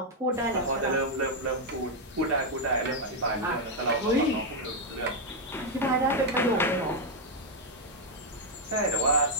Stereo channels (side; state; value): both; normal; correlation 0.00